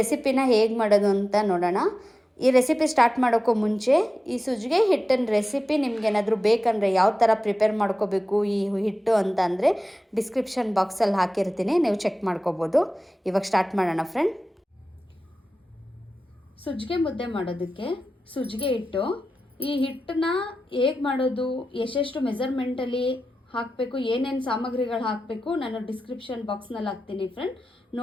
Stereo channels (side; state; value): both; normal; correlation 0.94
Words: ಹೇಗೆ ಮಾಡೋದು ಅಂತ ನೋಡೋಣ. ಈ ರೆಸಿಪಿ ಸ್ಟಾರ್ಟ್ ಮಾಡೋಕ್ಕೂ ಮುಂಚೆ ಈ ಸಜ್ಜಿಗೆ ಹಿಟ್ಟಿನ ರೆಸಿಪಿ ನಿಮ್ಗೇನಾದರೂ ಬೇಕಂದರೆ ಯಾವ ಥರ ಪ್ರಿಪೇರ್ ಮಾಡ್ಕೋಬೇಕು ಈ ಹಿಟ್ಟು ಅಂತ ಅಂದರೆ ಡಿಸ್ಕ್ರಿಪ್ಷನ್ ಬಾಕ್ಸಲ್ಲಿ ಹಾಕಿರ್ತೀನಿ, ನೀವು ಚೆಕ್ ಮಾಡ್ಕೋಬೋದು. ಇವಾಗ ಸ್ಟಾರ್ಟ್ ಮಾಡೋಣ ಫ್ರೆಂಡ್. ಸಜ್ಜಿಗೆ ಮುದ್ದೆ ಮಾಡೋದಕ್ಕೆ ಸಜ್ಜಿಗೆ ಹಿಟ್ಟು, ಈ ಹಿಟ್ಟನ್ನ ಹೇಗೆ ಮಾಡೋದು, ಎಷ್ಟೆಷ್ಟು ಮೆಜರ್ಮೆಂಟಲ್ಲಿ ಹಾಕಬೇಕು, ಏನೇನು ಸಾಮಗ್ರಿಗಳು ಹಾಕಬೇಕು ನಾನು ಡಿಸ್ಕ್ರಿಪ್ಷನ್ ಬಾಕ್ಸ್ನಲ್ಲಿ ಹಾಕ್ತೀನಿ ಫ್ರೆಂಡ್.